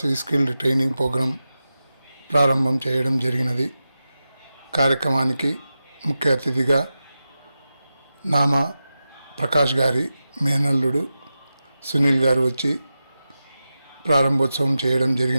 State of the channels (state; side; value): inverted; both; correlation -0.92